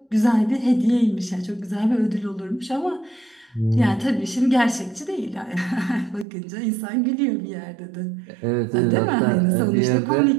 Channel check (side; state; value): left; drops out; at 6.2 s